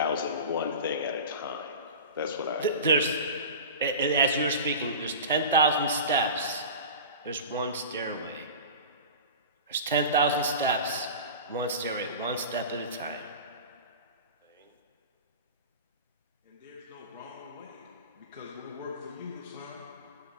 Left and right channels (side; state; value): both; inverted; correlation -0.33